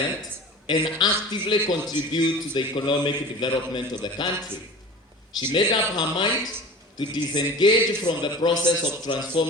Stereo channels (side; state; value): both; normal; correlation 0.38